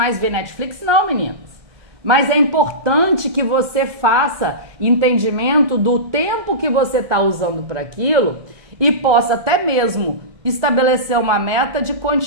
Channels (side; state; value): left; late; 1.2 ms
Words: ver Netflix? Não, meninas. Mas é importante que você faça entendimento do tempo que você está usando para aquilo e possa até mesmo estabelecer uma meta de